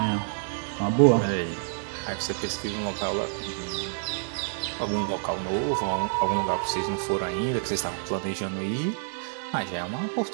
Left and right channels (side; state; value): left; silent; digital silence